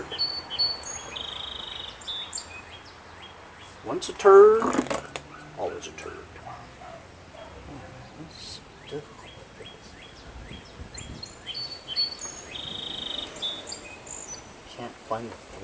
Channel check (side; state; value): both; identical; correlation 1.00